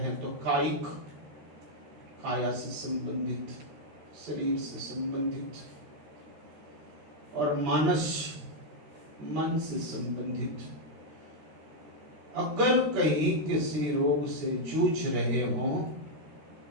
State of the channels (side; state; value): left; late; 13 ms